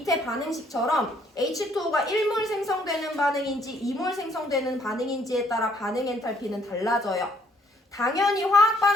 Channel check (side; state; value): both; normal; correlation 0.66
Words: 반응식처럼 H2O가 1몰 생성되는 반응인지 2몰 생성되는 반응인지에 따라 반응 엔탈피는 달라져요. 당연히 화학